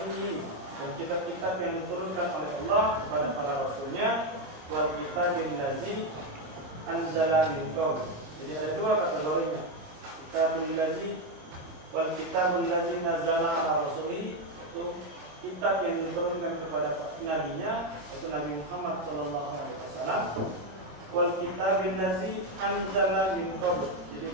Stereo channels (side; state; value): left; late; 27 ms